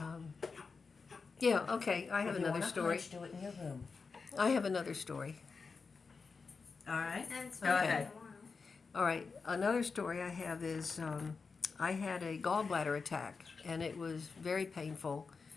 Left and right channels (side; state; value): right; quieter; 4.8 dB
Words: Yeah, okay. I have another story. Do it in your room. I have another story. All right. Go ahead. All right. Another story I have is I had a gallbladder attack, and it was very painful.